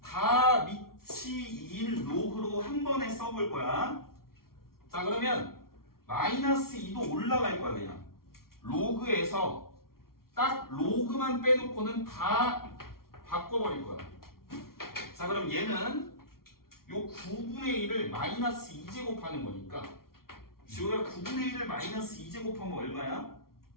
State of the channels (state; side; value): late; right; 0.93 ms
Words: 다 밑이 2인 로그로 한 번에 써볼 거야. 자, 그러면 마이너스 2도 올라갈 거야. 그냥 로그에서 딱 로그만 빼놓고는 다 바꿔버릴 거야. 자, 그럼 얘는 요 9분의 1을 마이너스 2제곱하는 거니까 지호야 9분의 1을 마이너스 2제곱하면 얼마야?